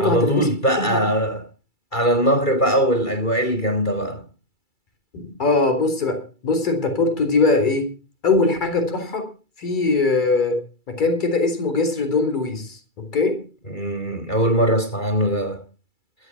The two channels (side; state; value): right; late; 2.3 ms